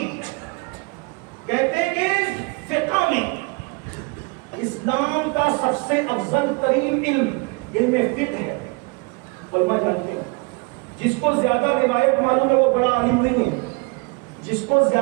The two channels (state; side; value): quieter; left; 30.2 dB